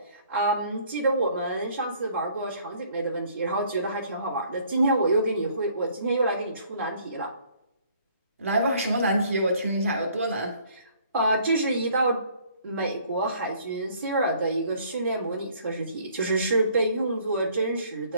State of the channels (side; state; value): both; inverted; correlation -0.59